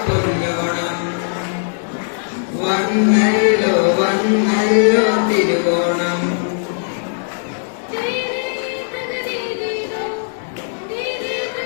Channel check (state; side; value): silent; right; digital silence